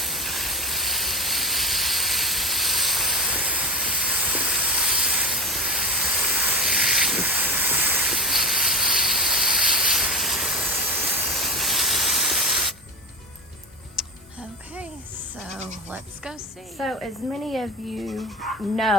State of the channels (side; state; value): both; normal; correlation 0.23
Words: Let's go see. So as many of you